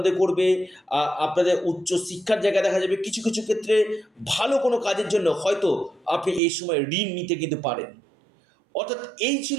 করবে, আপনাদের উচ্চ শিক্ষার জায়গা দেখা যাবে। কিছু কিছু ক্ষেত্রে ভালো কোনো কাজের জন্য হয়তো আপনি এই সময় ঋণ নিতে কিন্তু পারেন। অর্থাৎ এই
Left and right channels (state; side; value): drops out; left; at 6.4 s